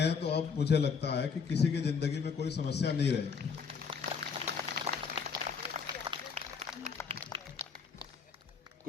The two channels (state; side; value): quieter; right; 5.9 dB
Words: तो अब मुझे लगता है कि किसी की जिंदगी में कोई समस्या नहीं रहेगी।